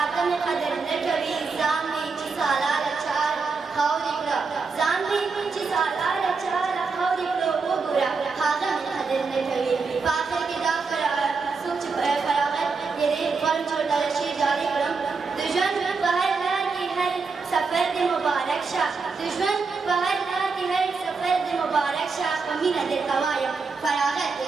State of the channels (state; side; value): quieter; left; 4.7 dB